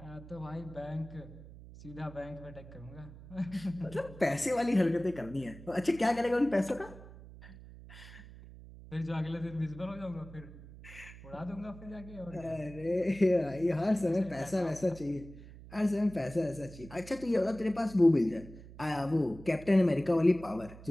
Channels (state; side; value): noise; right; hum, 17 dB below the sound